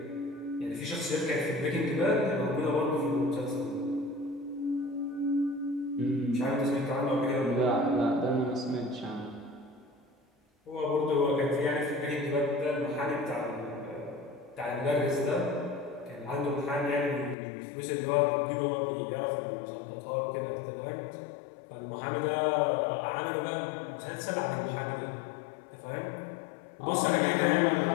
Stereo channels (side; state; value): right; drops out; at 17.4 s